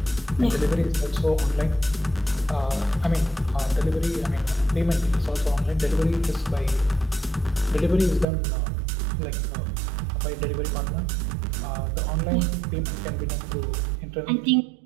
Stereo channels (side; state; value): left; drops out; at 8.2 s